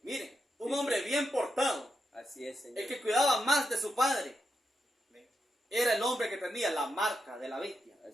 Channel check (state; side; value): normal; both; correlation 0.85